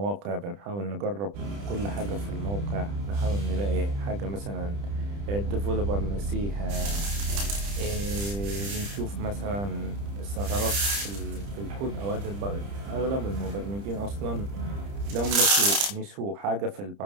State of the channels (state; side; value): late; left; 30 ms